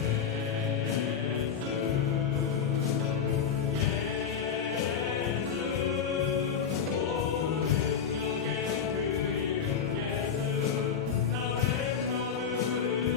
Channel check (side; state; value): right; quieter; 7.2 dB